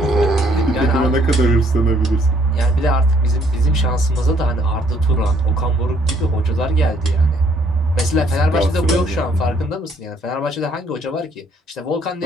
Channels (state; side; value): normal; both; correlation 0.65